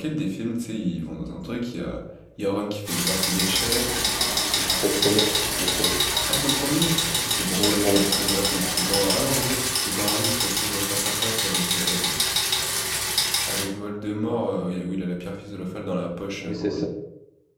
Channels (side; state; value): both; identical; correlation 1.00